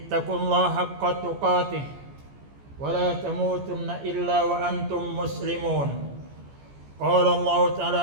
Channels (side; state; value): left; late; 14 ms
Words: haqqa tuqatih wa la tamutunna illa wa antum muslimun. Qala Allah